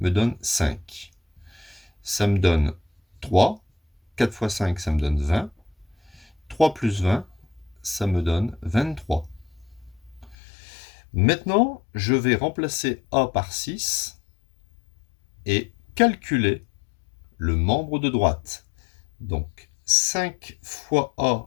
donne 5. Ça me donne 3. 4 fois 5, ça me donne 20. 3 plus 20, ça me donne 23. Maintenant, je vais remplacer a par 6 et calculer le membre de droite. Donc 5 fois a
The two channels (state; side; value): drops out; right; at 10.4 s